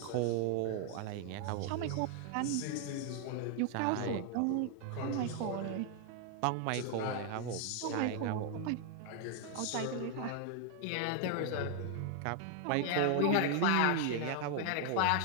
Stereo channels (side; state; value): both; different; correlation 0.00